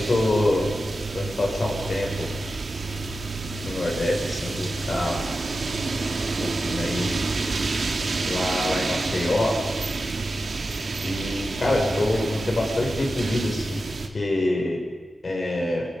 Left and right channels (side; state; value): both; normal; correlation 0.91